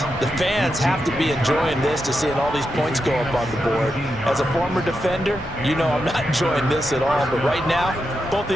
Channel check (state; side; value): normal; both; correlation 0.86